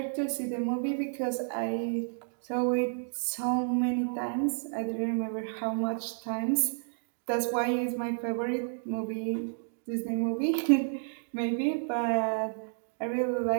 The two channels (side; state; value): left; silent; digital silence